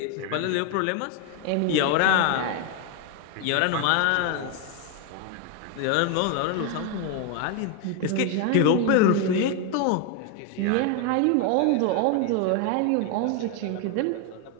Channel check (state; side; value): different; both; correlation 0.01